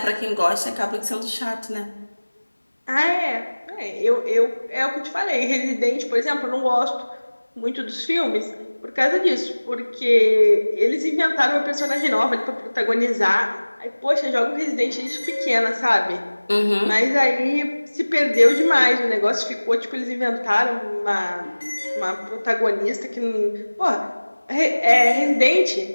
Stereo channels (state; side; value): inverted; both; correlation -1.00